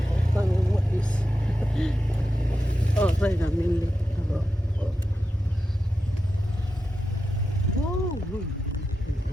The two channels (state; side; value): normal; both; correlation 0.90